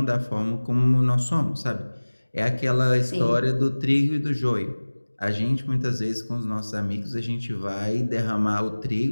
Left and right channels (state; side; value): inverted; both; correlation -1.00